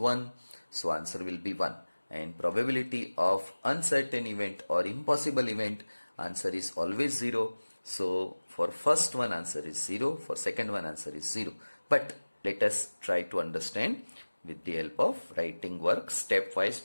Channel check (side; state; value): both; inverted; correlation -1.00